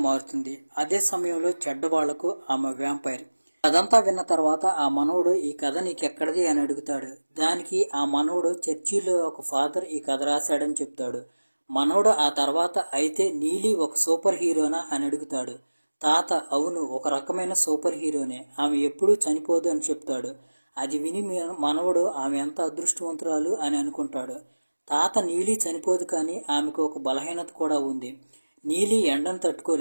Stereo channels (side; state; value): both; inverted; correlation -1.00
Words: మారుతుంది. అదే సమయంలో చెడ్డవాళ్లకు ఆమె వ్యాంపైర్. అదంతా విన్న తర్వాత ఆ మనవడు, ఈ కథ నీకెక్కడిది అని అడుగుతాడు. దానికి ఆ మనవడు, చర్చిలో ఒక ఫాదర్ ఈ కథ రాశాడని చెప్తాడు. మనవడు ఆ తర్వాత, అయితే నీలి ఒక సూపర్ హీరోనా అని అడుగుతాడు. తాత, అవును, ఒక రకమైన సూపర్ హీరోనే, ఆమె ఎప్పుడూ చనిపోదు అని చెప్తాడు. అది విని మనవడు ఆమె ఎంత అదృష్టవంతురాలు అని అనుకుంటాడు. తాత, నీలి చనిపోదు, కానీ ఆమెకు ఒక బలహీనత కూడా ఉంది. నీలి ఎండను